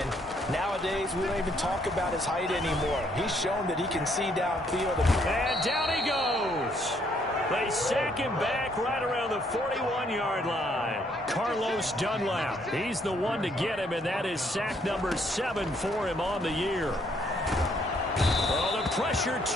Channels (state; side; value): normal; both; correlation 0.69